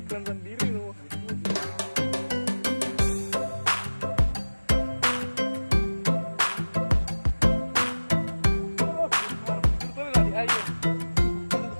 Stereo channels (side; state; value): both; inverted; correlation -1.00